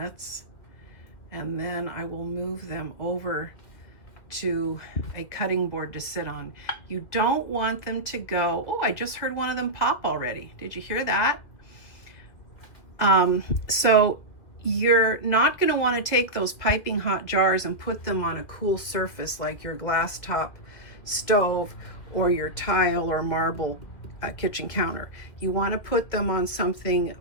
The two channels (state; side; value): late; right; 2.3 ms